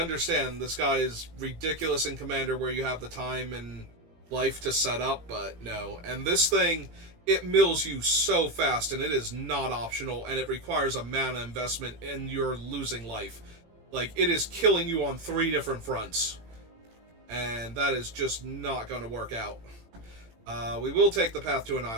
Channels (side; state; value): left; late; 18 ms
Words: this guy is ridiculous in Commander where you have the time and life to set up, but no. And this thing, it mills you so fast, and it is not optional, and it requires a mana investment, and you're losing life. Like, it is killing you on 3 different fronts. And that is just not going to work out. We will take the path to